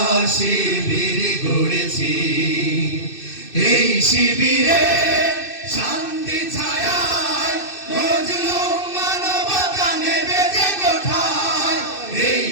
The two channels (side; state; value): right; late; 2.6 ms